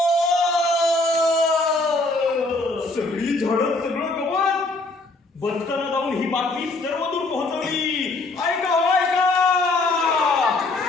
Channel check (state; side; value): quieter; right; 3.1 dB